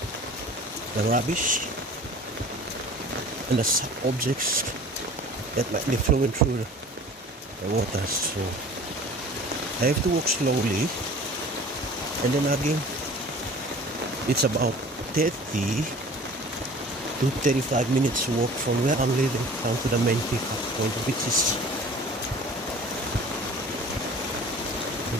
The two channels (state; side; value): normal; both; correlation 0.44